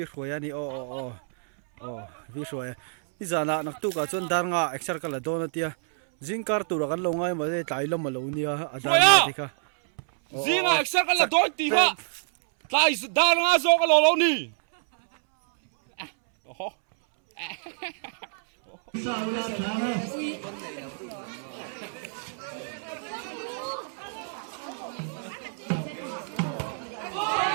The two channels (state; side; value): silent; left; 60 dB below the other